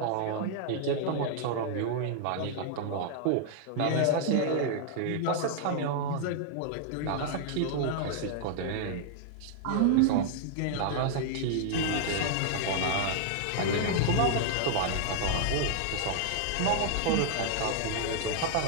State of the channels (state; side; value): different; both; correlation -0.01